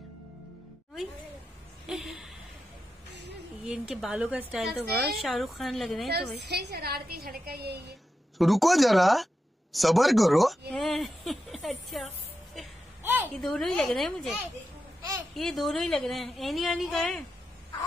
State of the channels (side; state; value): both; normal; correlation 0.89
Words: ये इनके बालों का स्टाइल तो बहुत शाहरुख खान लग रहे हैं। तो भाई शरारती लड़का यही है। रुको जरा, सबर करो। अच्छा ये दोनों ही लग रहे हैं मुझे, ये दोनों ही लग रहे हैं। एनी आनी का है।